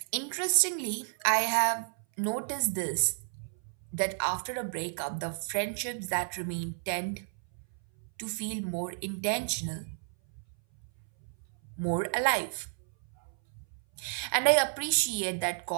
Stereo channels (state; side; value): silent; left; 57 dB below the other